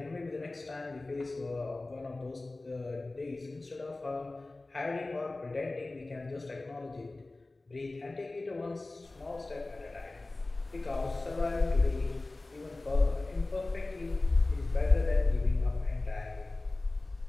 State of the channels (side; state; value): right; quieter; 3.1 dB